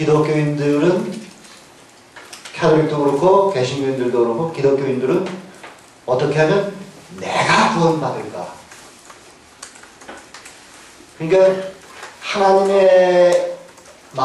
캐톨릭도 그렇고 개신교인들도 그렇고 기독교인들은 어떻게 하면 내가 구원받을까 그러니까 하나님의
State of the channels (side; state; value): both; identical; correlation 1.00